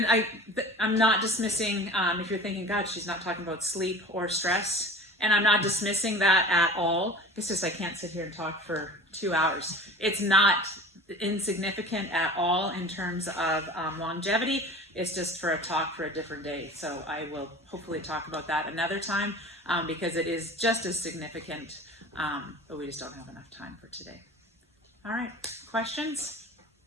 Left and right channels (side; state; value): both; normal; correlation 0.38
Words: not dismissing, if you're thinking, God, she's not talking about sleep or stress, and I'm not dismissing that at all. It's just I can't sit here and talk for 2 hours. It's not insignificant at all in terms of longevity. It's just for a talk for a different day. So I will hopefully talk about that another time. because it is just as significant, but we just don't have enough time for today. All right, questions?